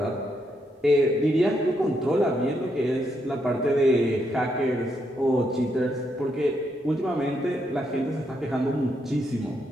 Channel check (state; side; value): normal; both; correlation 0.78